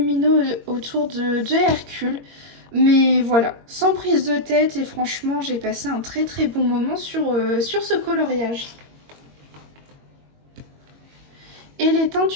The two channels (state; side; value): late; left; 22 ms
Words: autour de Hercule. Mais voilà, sans prise de tête et franchement, j'ai passé un très bon moment sur ce coloriage. Et les teintes